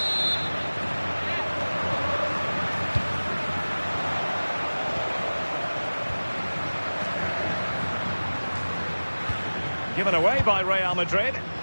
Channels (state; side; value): inverted; both; correlation -1.00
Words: Given away by Real Madrid.